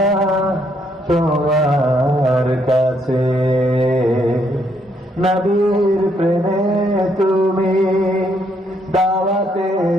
তোমার কাছে। নবীর প্রেমে তুমি দাওয়াতে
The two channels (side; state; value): both; normal; correlation 0.72